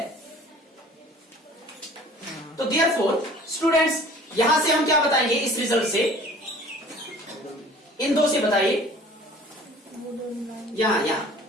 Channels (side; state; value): both; normal; correlation 0.48